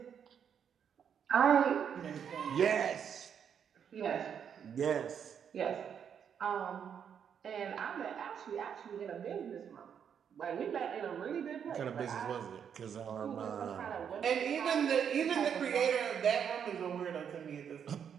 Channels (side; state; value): left; quieter; 7.9 dB